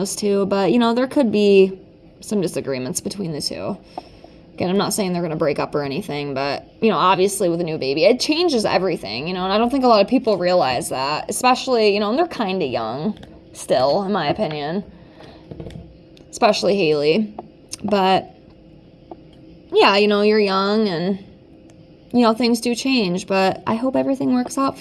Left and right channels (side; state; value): both; identical; correlation 1.00